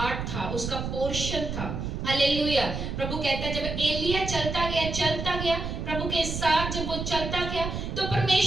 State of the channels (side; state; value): right; noise; rumble, 4 dB below the sound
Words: था, उसका पोर्शन था। हालेलुया। प्रभु कहता है जब एलिया चलता गया प्रभु के साथ, जब वो चलता गया, तो